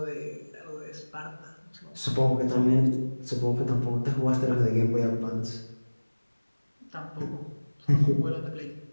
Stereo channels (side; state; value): both; inverted; correlation -1.00